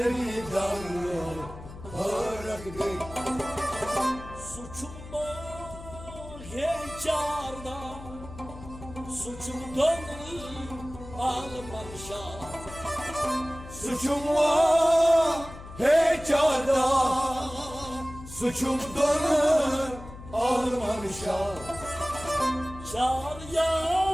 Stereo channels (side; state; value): left; noise; hum, 14 dB below the sound